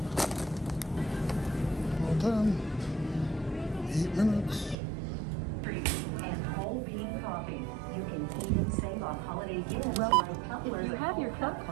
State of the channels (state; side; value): drops out; left; at 4.8 s